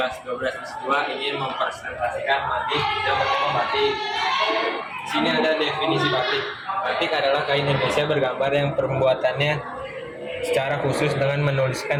12 S2 ingin mempresentasikan batik yang bertema batik. Di sini ada definisi batik. Batik adalah kain Indonesia bergambar yang pembuatannya secara khusus dengan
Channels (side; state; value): both; identical; correlation 1.00